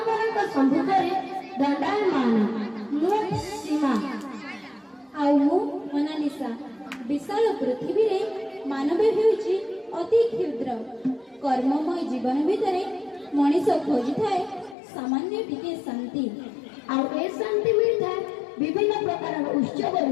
मानक सम्मुखरे दंडायमान मु सीमा आउ मु मोनालिसा। विशाल पृथ्वी रे मानव हेउची अति क्षुद्र। कर्ममय जीवन भितरे मनीष खोजी थाए सामान्य टिके शांति। आउ ए शांति मिलता विभिन्न प्रकार उत्सव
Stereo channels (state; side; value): drops out; right; at 14.8 s